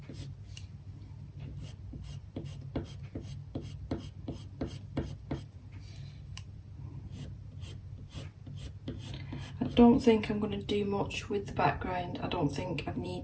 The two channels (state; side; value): identical; both; correlation 1.00